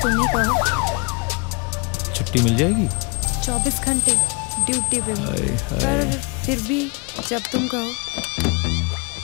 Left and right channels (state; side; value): quieter; right; 31.4 dB